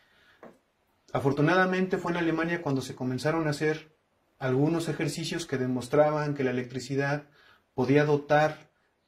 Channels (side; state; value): both; identical; correlation 1.00